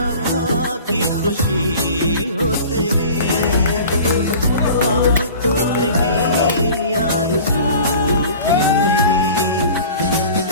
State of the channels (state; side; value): inverted; both; correlation -0.42